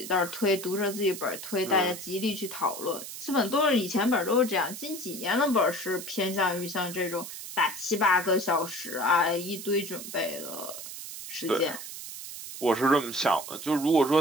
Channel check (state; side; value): noise; right; hiss, 10 dB below the sound